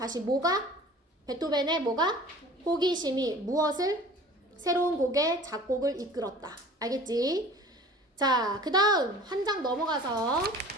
뭐가? 베토벤의 뭐가? 호기심이 무엇을? 새로운 곡의 작곡을 이끌었다. 알겠지? 자, 그 다음 한 장 넘어가서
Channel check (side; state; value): both; normal; correlation 0.44